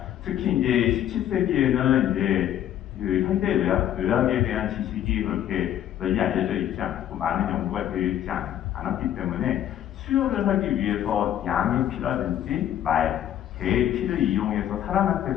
특히 이제 17세기에는 이제 그 현대 의학에 대한 지식이 그렇게 널리 알려져 있지 않고 많은 연구가 되어 있지 않았기 때문에 수혈을 하기 위해서 양의 피라든지 말, 개의 피를 이용해서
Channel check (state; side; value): quieter; right; 11.3 dB